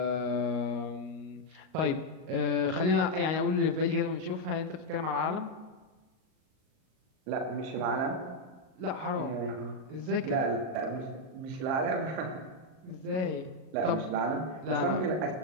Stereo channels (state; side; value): late; left; 38 ms